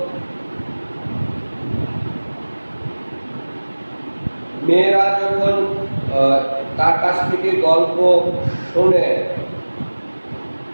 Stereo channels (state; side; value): inverted; both; correlation -1.00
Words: মেয়েরা যখন তার কাছ থেকে গল্প শোনে,